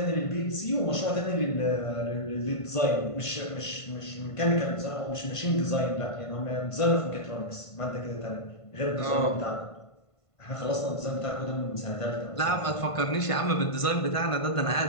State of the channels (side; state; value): right; late; 1.5 ms